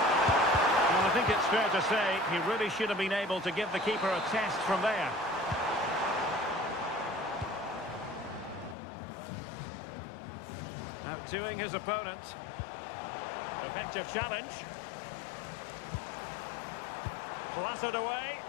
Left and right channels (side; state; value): right; drops out; at 8.8 s